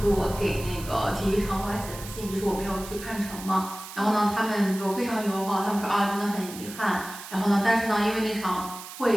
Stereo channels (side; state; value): right; noise; hiss, 13 dB below the sound